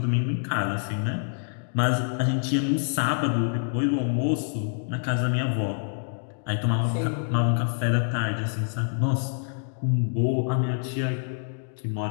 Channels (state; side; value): silent; right; digital silence